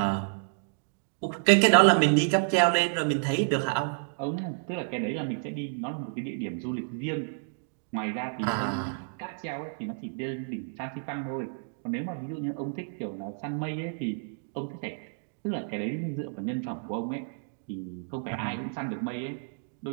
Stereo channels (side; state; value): left; silent; digital silence